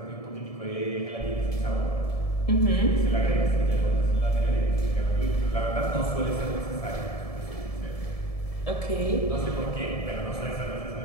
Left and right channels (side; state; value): right; late; 1.7 ms